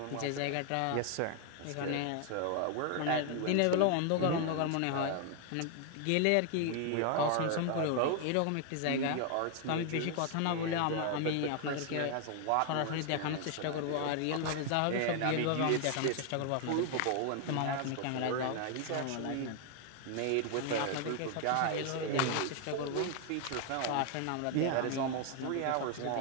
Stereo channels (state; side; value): different; both; correlation 0.00